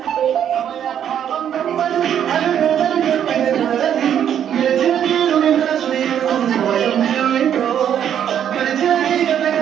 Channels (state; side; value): quieter; left; 9.5 dB